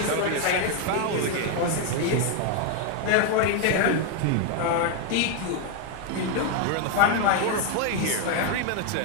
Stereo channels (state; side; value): different; both; correlation 0.01